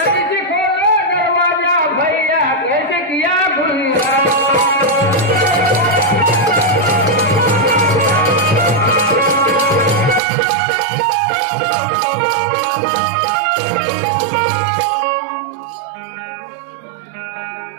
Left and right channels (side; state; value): left; drops out; at 10.2 s